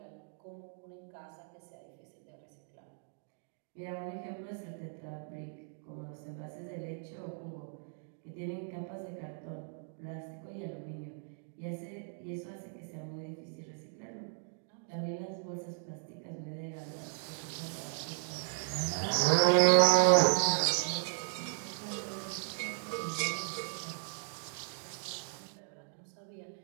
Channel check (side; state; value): left; silent; digital silence